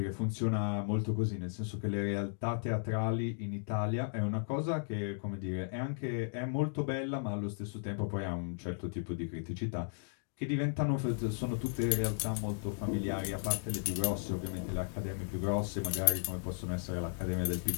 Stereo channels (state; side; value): silent; right; digital silence